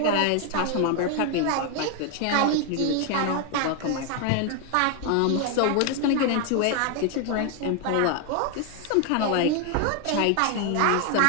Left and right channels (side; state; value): both; different; correlation 0.00